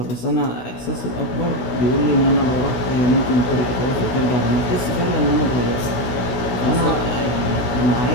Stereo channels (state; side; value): late; right; 16 ms